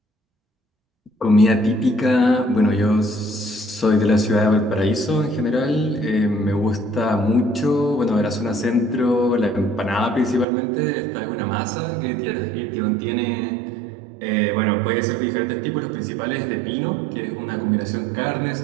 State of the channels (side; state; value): left; drops out; at 10.5 s